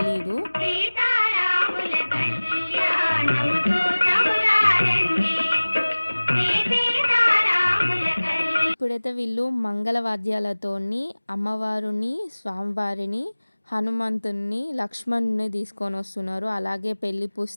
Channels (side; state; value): both; inverted; correlation -1.00